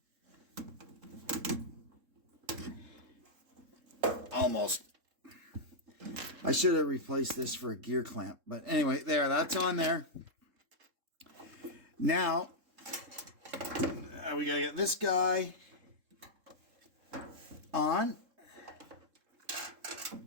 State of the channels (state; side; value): late; left; 3.7 ms